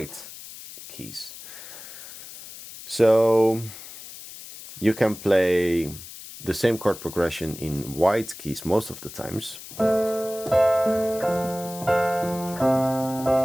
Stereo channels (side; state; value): left; noise; hiss, 14 dB below the sound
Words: keys. So you can play the same chord progression in white keys most of the times.